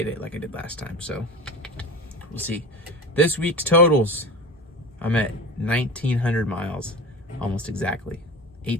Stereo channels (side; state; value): both; normal; correlation 0.31